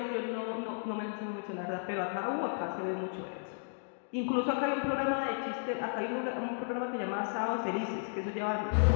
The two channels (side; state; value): right; silent; digital silence